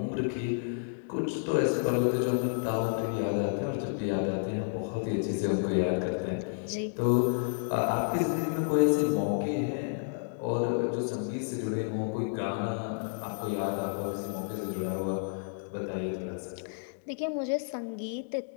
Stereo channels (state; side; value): silent; right; digital silence